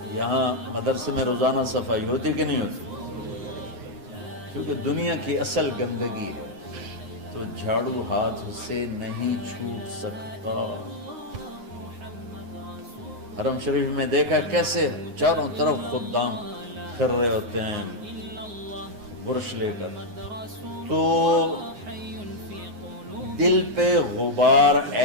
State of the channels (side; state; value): left; late; 9.6 ms